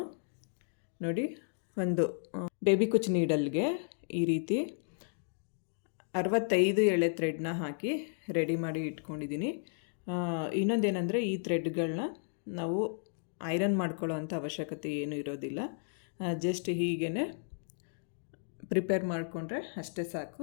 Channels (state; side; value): silent; right; digital silence